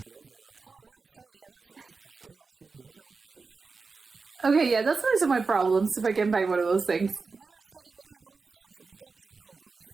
Okay, yeah, that's one of my problems if I can buy one of those things.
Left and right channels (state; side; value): quieter; left; 4.4 dB